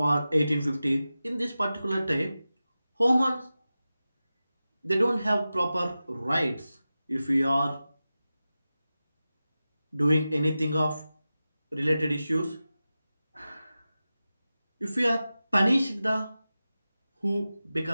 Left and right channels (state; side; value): inverted; both; correlation -0.94